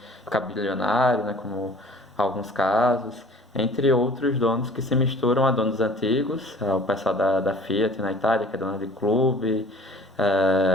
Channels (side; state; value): both; normal; correlation 0.49